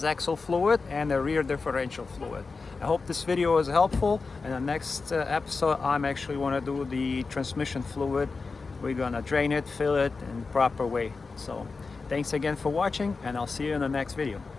fluid and the rear differential fluid. I hope this video was helpful. In the next episode, I'm actually want to do the transmission fluid. We're gonna drain it, fill it in the proper way. So thanks again for watching, and I'll see you in the next video.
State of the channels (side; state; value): right; quieter; 4.3 dB